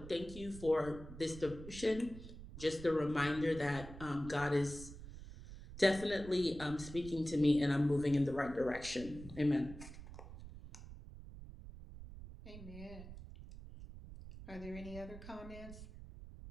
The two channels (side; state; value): right; noise; rumble, 13 dB below the sound